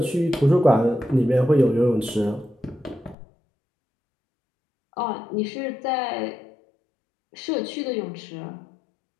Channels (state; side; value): drops out; right; at 3.2 s